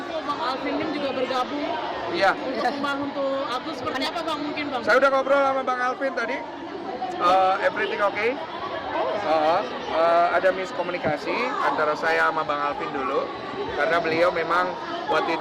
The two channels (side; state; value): both; identical; correlation 1.00